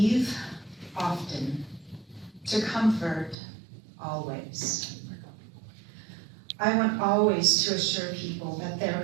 often, to comfort always. I want always to assure people that their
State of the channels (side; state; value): left; drops out; at 3.4 s